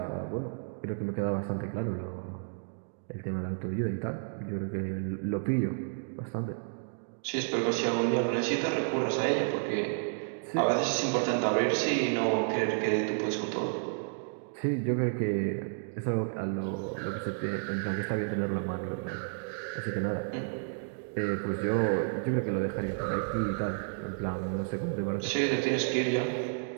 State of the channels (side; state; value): left; silent; digital silence